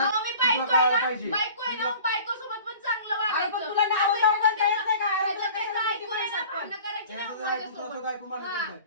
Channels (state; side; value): inverted; both; correlation -0.44